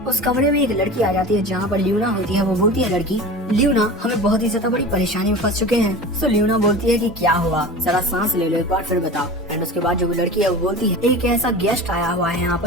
उस कमरे में एक लड़की आ जाती है जहाँ पर लियोना होती है। वो बोलती है लड़की लियोना हमें बहुत ही ज्यादा बड़ी परेशानी में फंस चुके हैं। सो लियोना बोलती है कि क्या हुआ, जरा सांस ले लो एक बार फिर बताओ। एंड उसके बाद जो लड़की है वो बोलती है एक ऐसा गेस्ट आया हुआ है यहाँ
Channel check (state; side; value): normal; both; correlation 0.34